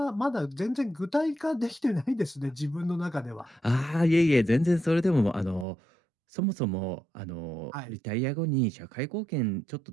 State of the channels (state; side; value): drops out; left; at 5.7 s